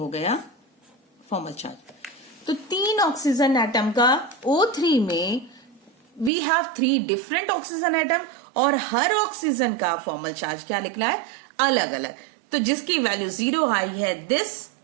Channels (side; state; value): left; drops out; at 6.3 s